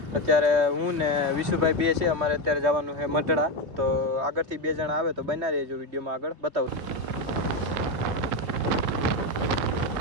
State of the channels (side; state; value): left; late; 2.9 ms